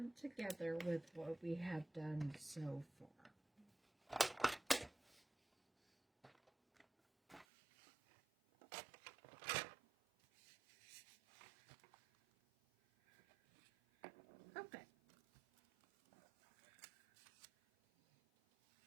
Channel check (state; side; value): drops out; left; at 7.5 s